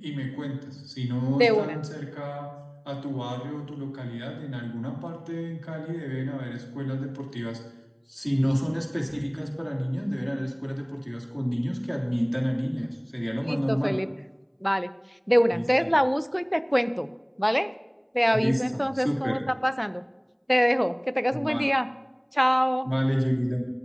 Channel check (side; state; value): both; identical; correlation 1.00